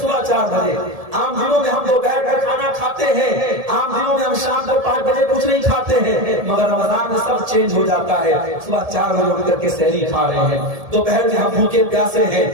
4 بجے، عام دنوں میں ہم دوپہر کا کھانا کھاتے ہیں، عام دنوں میں ہم شام کو 5 بجے کچھ نہیں کھاتے ہیں، مگر رمضان میں سب چینج ہو جاتا ہے۔ صبح 4 بجے اٹھ کر کے سحری کھا رہے ہیں، دوپہر میں ہم بھوکے پیاسے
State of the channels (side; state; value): left; late; 1.7 ms